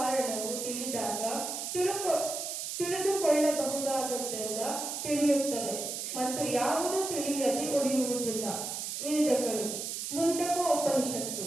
ತಿಳಿದಾಗ ತಿಳಿದುಕೊಳ್ಳಬಹುದಾದದ್ದೆಲ್ಲ ತಿಳಿಯುತ್ತದೆ ಮತ್ತು ಯಾವುದು ತಿಳಿಯದೆ ಉಳಿಯುವುದಿಲ್ಲ. ವೇದಗಳು ಮುಂಡಕೋ ಉಪನಿಷತ್ತು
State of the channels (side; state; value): right; noise; hiss, 4 dB below the sound